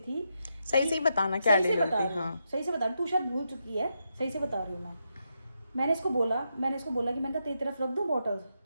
सही से बताना क्या सही से डील बता थी। रही हूँ, हाँ, सही से बता रही हूँ, तू शायद भूल चुकी है, सही से बता रही हूँ मैं। मैंने इसको बोला कि मैंने कहा तेरी तरफ रख दूँ बॉटल,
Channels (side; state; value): both; inverted; correlation -0.83